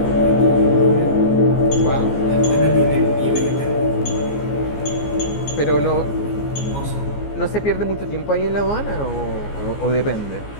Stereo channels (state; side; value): late; right; 14 ms